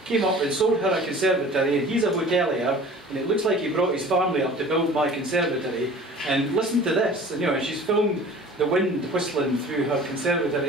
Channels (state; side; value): normal; both; correlation 0.44